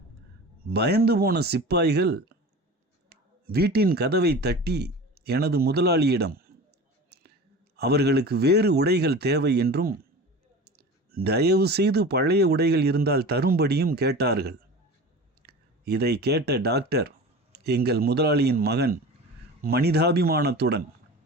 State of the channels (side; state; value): both; normal; correlation 0.35